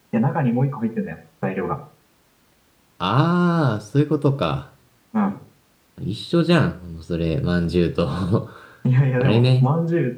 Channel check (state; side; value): identical; both; correlation 1.00